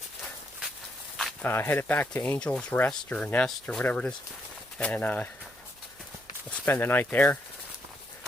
Headed back to Angel's Rest or Nest or whatever it is, and we'll spend the night there.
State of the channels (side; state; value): right; noise; hum, 28 dB below the sound